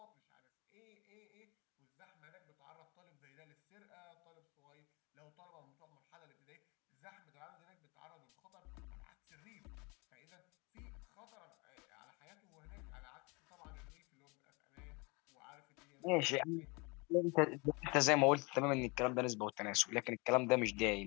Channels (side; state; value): right; quieter; 28.2 dB